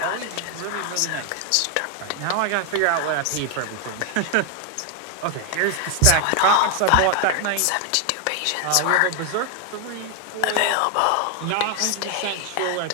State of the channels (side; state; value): both; different; correlation 0.01